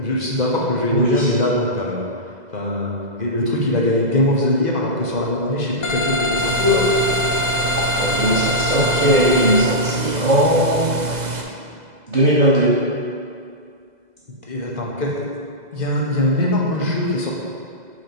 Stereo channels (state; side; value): late; left; 2.0 ms